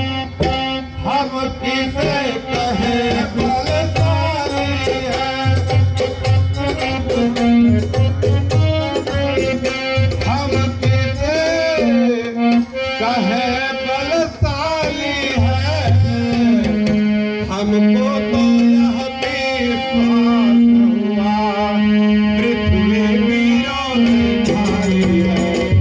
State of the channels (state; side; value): identical; both; correlation 1.00